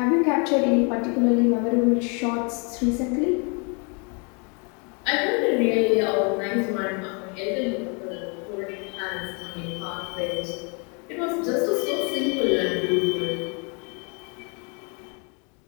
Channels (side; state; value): right; quieter; 34.6 dB